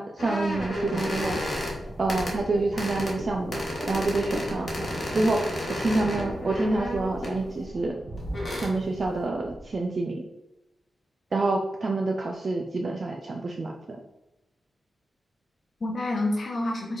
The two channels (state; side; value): normal; both; correlation 0.90